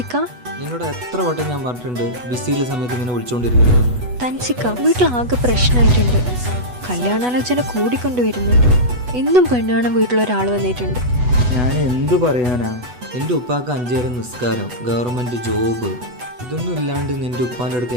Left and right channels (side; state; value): left; late; 8.1 ms